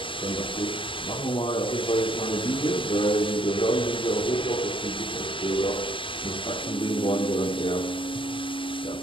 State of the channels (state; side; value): late; right; 0.25 ms